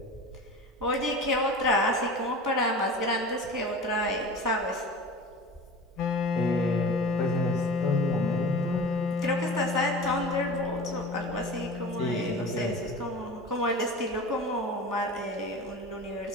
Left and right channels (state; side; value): normal; both; correlation 0.34